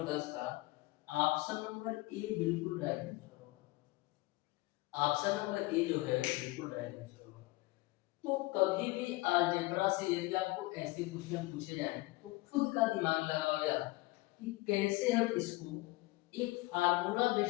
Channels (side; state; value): right; quieter; 21.3 dB